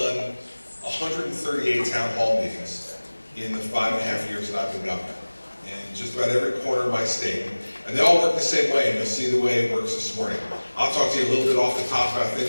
138 town hall meetings in the 5.5 years that I've been governor, in just about every corner of my state. And they all work the same way, and you'll see the way it works this morning. I'll talk to you a little bit off the top about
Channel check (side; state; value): both; inverted; correlation -1.00